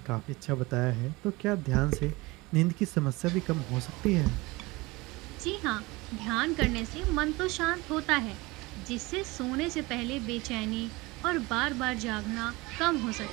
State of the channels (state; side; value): quieter; left; 22.6 dB